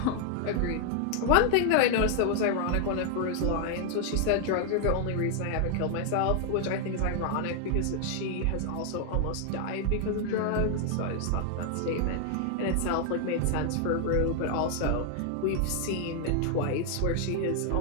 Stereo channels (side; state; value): both; different; correlation 0.00